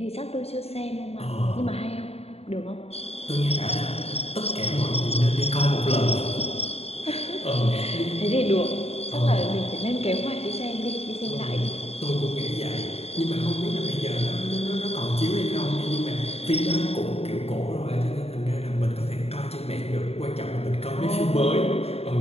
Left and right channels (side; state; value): right; late; 0.29 ms